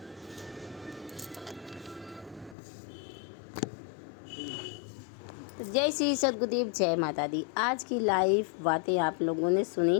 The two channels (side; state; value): right; drops out; at 2.6 s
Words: जय श्री सद्गुरुदेव, जय माता दी। आज की लाइव बातें आप लोगों ने सुनी